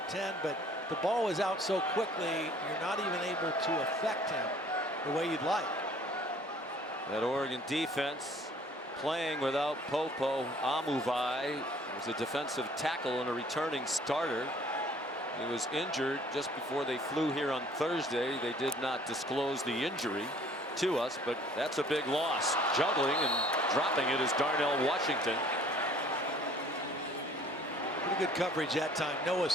but the ball is out so quickly, you're not even able to affect him the way you'd like. That Oregon defense playing without Popo Amuvai, was a defensive tackle and a returning starter. He was injured just before they flew here on Thursday. They did not disclose the injury to us, but that's a big loss. Juggling and dropping it is Darnell Washington. Pretty good coverage that time. Noah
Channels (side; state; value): both; normal; correlation 0.55